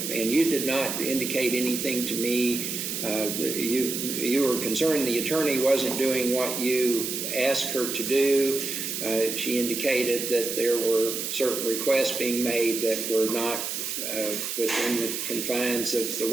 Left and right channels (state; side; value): noise; right; hiss, 3 dB below the sound